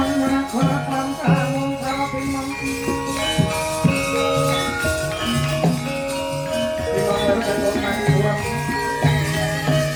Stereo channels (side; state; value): both; identical; correlation 1.00